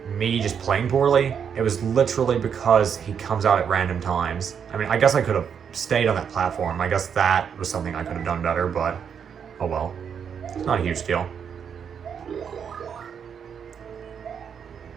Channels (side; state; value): left; quieter; 7.4 dB